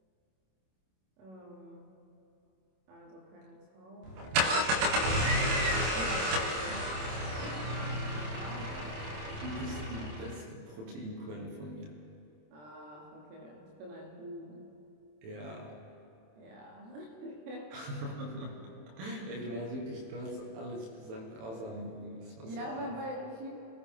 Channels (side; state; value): left; late; 27 ms